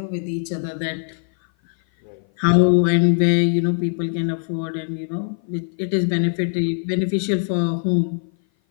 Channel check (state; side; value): silent; right; 57 dB below the other